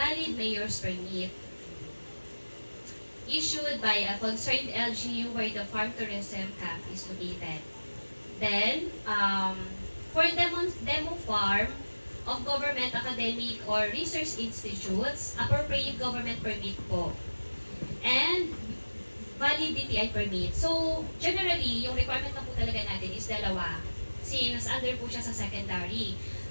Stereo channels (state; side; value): inverted; both; correlation -1.00